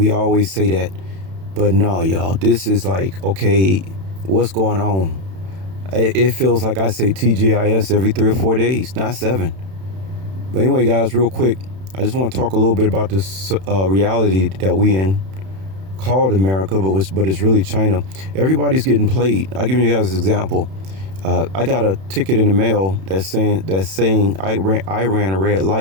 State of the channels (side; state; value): left; late; 31 ms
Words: always say that, but no, y'all, this is like, okay, what's going on? It feels like I say TGIS every 3 or 4 days, not 7. But anyway, guys, real quick, I just want to talk a little bit about this reality that we in, called America, but it's really China. Everybody's getting played. I'll give you guys an example. I got a ticket in the mail that's saying I ran a red